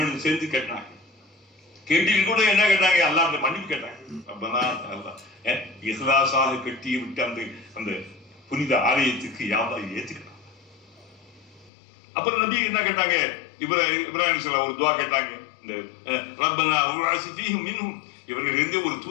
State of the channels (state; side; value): drops out; right; at 11.7 s